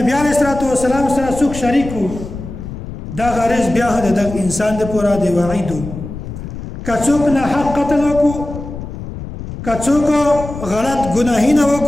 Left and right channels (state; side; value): noise; left; rumble, 10 dB below the sound